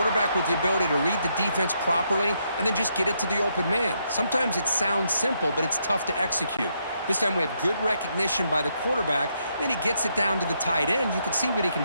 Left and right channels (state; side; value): inverted; both; correlation -0.77